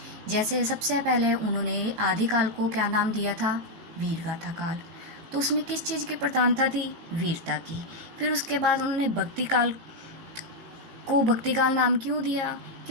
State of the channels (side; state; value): left; late; 17 ms